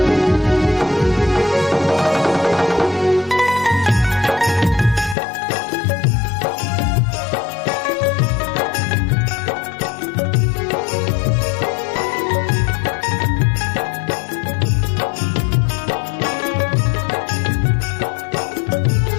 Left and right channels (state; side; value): drops out; right; at 5.2 s